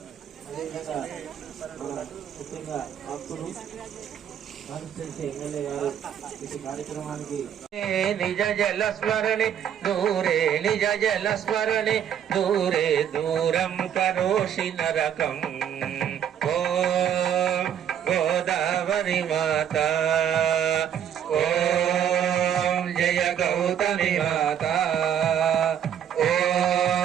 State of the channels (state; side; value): quieter; left; 9.3 dB